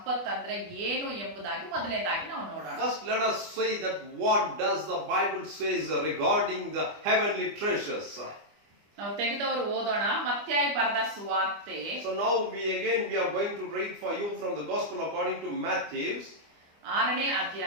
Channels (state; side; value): late; left; 25 ms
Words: ಅಂದ್ರೆ ಏನು ಎಂಬುದಾಗಿ ಮೊದಲನೇದಾಗಿ ನಾವು ನೋಡೋಣ. First let us say that what does the Bible says regarding the heavenly treasures. ನಾವು ತೆಗೆದವರು ಓದೋಣ. ಮತ್ತಾಯ ಬರೆದ ಸುವಾರ್ತೆ. So now we are going to read for you from the Gospel according to Matthew, 6ನೇ